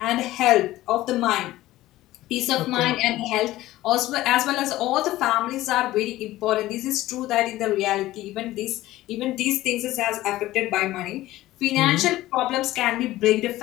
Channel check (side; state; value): right; quieter; 16.2 dB